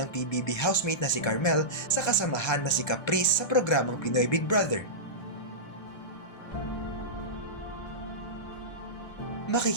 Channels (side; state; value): right; late; 1.6 ms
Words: PBB housemate na si Carmel sa kasamahan na si Caprice sa programang Pinoy Big Brother.